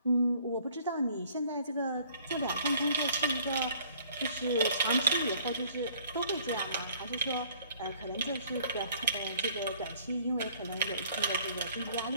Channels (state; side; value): inverted; both; correlation -0.58